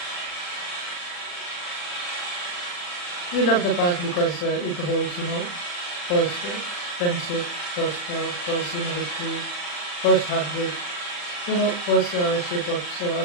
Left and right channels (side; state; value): right; late; 40 ms